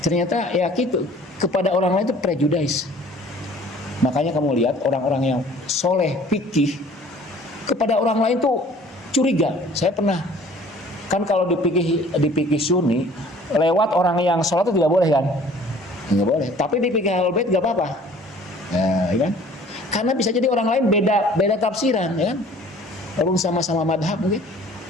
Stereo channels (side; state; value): both; normal; correlation 0.52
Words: ya gitu, kepada orang lain itu prejudice. Makanya kamu lihat orang-orang yang soleh fikih kepada orang lain tuh curiga. Saya pernah, kan kalau di fikih Sunni lewat orang yang sholat itu tidak boleh kan? Nggak boleh. Tapi di fikih Ahlul Bait nggak apa-apa. Nah, ya kan? Karena bisa jadi orang lain beda tafsiran, ya kan? Orang sama-sama madhab mungkin